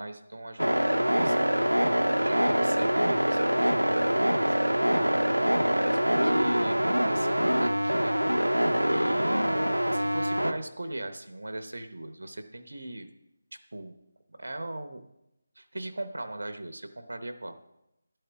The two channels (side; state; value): both; inverted; correlation -0.99